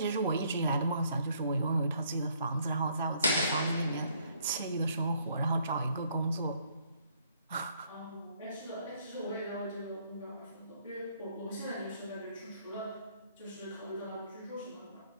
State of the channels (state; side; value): inverted; both; correlation -0.66